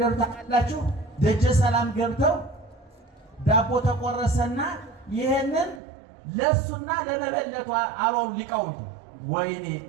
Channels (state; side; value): drops out; left; at 5.8 s